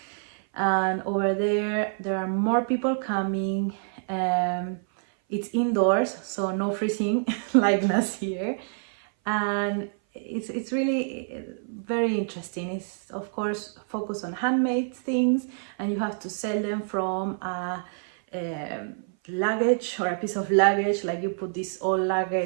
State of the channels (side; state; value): left; silent; 57 dB below the other